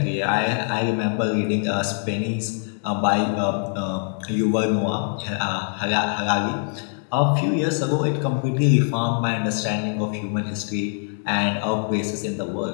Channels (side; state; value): right; silent; 63 dB below the other